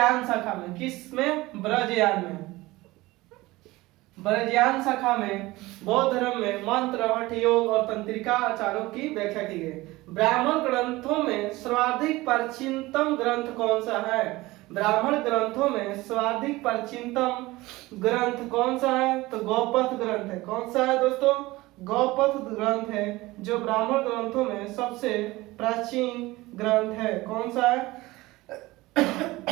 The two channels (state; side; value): quieter; left; 19.8 dB